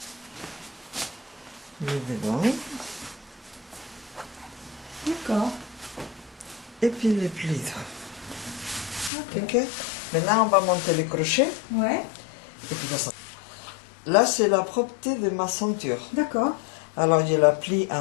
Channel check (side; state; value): right; drops out; at 9.1 s